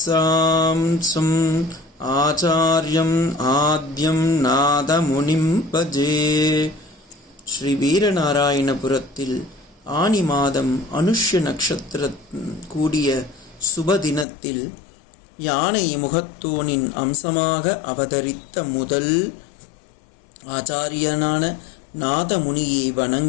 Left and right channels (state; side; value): drops out; right; at 14.2 s